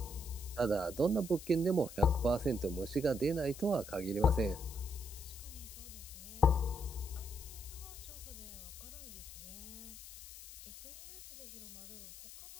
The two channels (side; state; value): left; noise; hiss, 14 dB below the sound